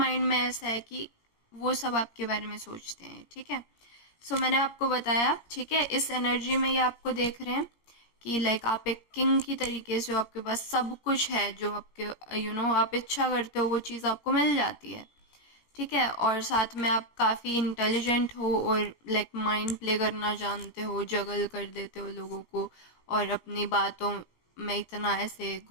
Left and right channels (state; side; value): late; right; 17 ms